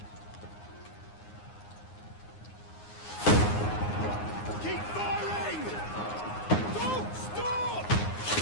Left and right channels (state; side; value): late; right; 9.6 ms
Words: Keep firing! Don't stop!